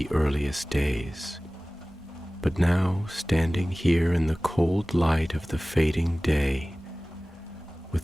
earliest days. But now, standing here in the cold light of the fading day,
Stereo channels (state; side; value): normal; both; correlation 0.98